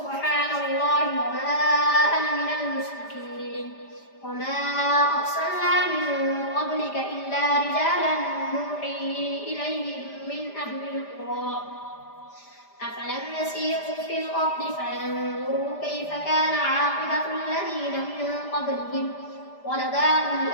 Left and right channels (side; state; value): right; late; 5.0 ms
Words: الله وما أنا من المشركين وما أرسلنا من قبلك إلا رجالا نوحي إليهم من أهل القرى أفلم يسيروا في الأرض فينظروا كيف كان عاقبة الذين من قبلهم ولدار